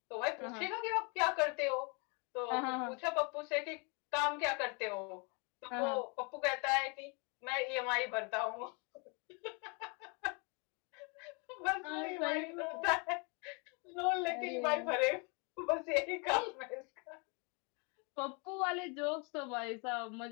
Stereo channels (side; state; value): right; quieter; 33.5 dB